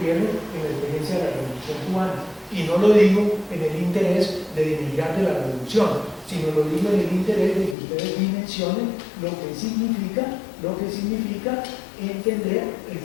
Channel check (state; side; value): drops out; right; at 7.8 s